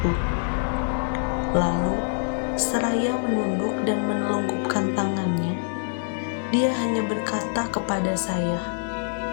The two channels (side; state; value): right; silent; digital silence